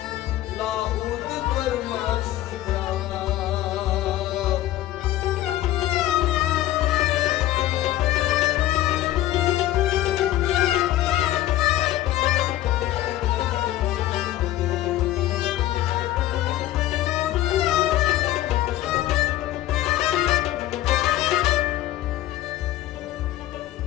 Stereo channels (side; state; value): right; quieter; 14.3 dB